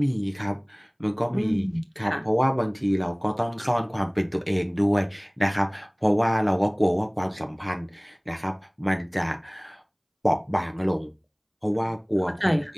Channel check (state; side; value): identical; both; correlation 1.00